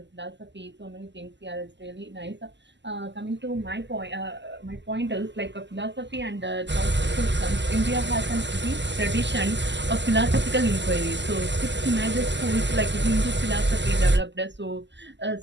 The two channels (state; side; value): late; left; 0.52 ms